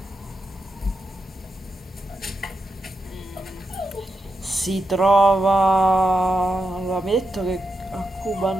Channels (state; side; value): normal; both; correlation 0.86